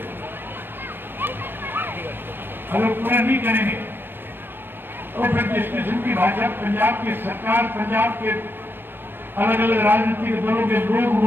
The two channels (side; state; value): left; late; 0.097 ms